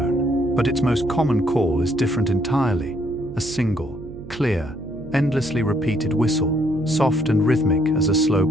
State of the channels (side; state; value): right; noise; hum, 15 dB below the sound